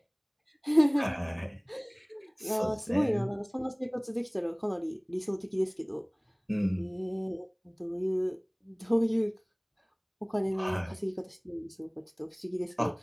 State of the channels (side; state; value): both; identical; correlation 1.00